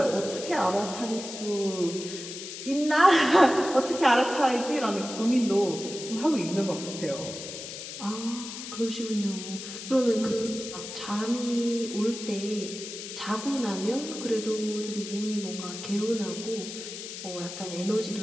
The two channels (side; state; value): left; noise; hiss, 9 dB below the sound